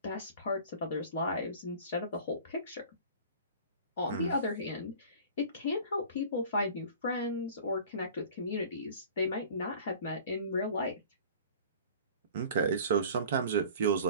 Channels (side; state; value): both; inverted; correlation -0.44